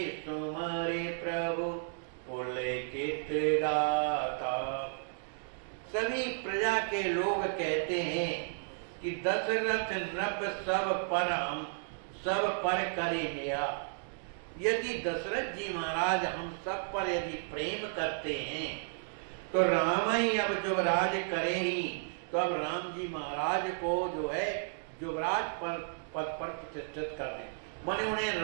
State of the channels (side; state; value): left; silent; digital silence